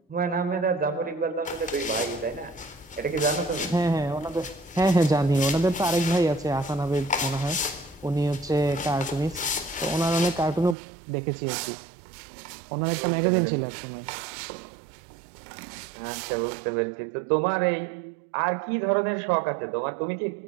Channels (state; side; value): drops out; left; at 10.8 s